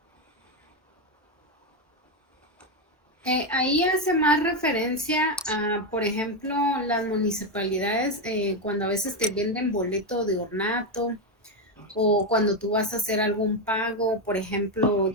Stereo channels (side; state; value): both; normal; correlation 0.07